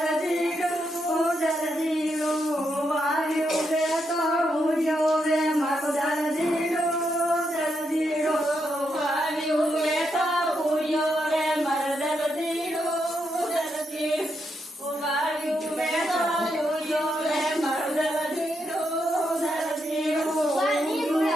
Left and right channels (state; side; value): normal; both; correlation 0.81